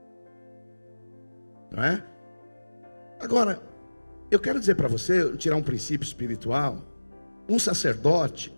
Não é? Agora, eu quero dizer para você, tirar um princípio espiritual. Um sacerdote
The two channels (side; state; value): both; inverted; correlation -1.00